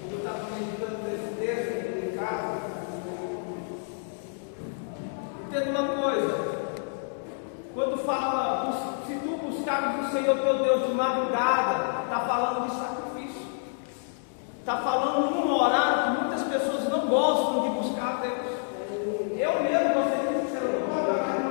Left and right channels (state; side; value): silent; right; digital silence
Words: Eu estava meditando nesse texto aqui em casa. Entenda uma coisa. Quando fala, se tu buscares o Senhor teu Deus de madrugada, está falando de sacrifício. Está falando num horário que muitas pessoas não gostam de buscar a Deus. Eu mesmo, você disse que eu não gosto de